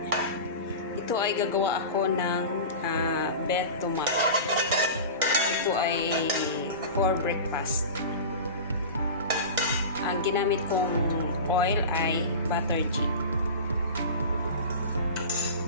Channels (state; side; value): inverted; both; correlation -0.30